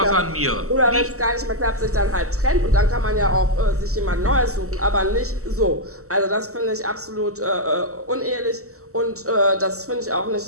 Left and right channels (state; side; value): late; left; 0.64 ms